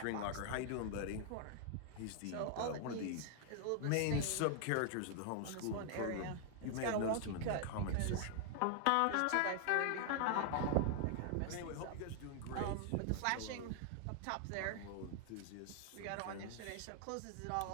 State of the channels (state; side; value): different; both; correlation 0.00